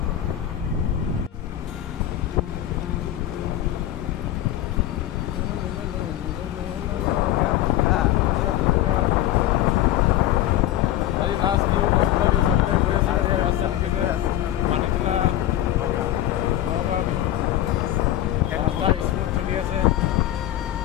আজি লাষ্ট নিউ কষ্ট দিছে গৈ আছো ৰাস্তা দিছে মানিতলা নগাঁও বিহু ৰাস্তা স্মুথ চলি আছে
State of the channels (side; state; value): right; quieter; 12.9 dB